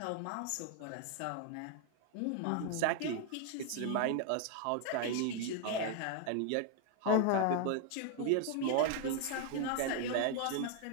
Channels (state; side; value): different; both; correlation 0.00